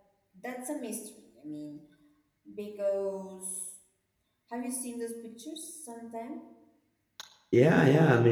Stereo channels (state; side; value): identical; both; correlation 1.00